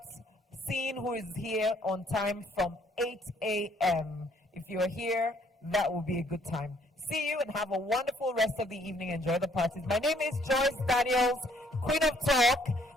seeing who is here on time from 8 a.m. If you're here, that will be a good time. See you and have a wonderful rest of the evening. Enjoy the parties. My name is Joyce Daniels, Queen of Talk,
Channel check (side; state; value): both; normal; correlation 0.64